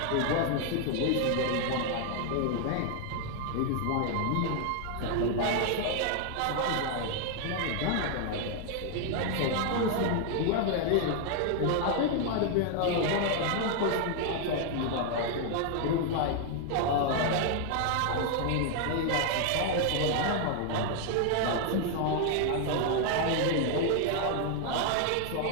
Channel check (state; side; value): different; both; correlation 0.00